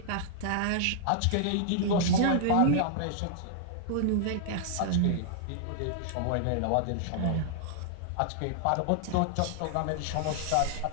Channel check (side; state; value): both; different; correlation -0.01